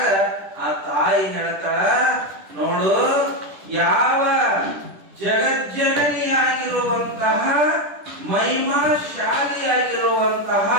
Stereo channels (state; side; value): late; left; 10 ms